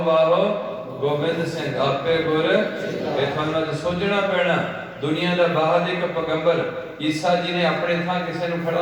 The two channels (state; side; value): identical; both; correlation 1.00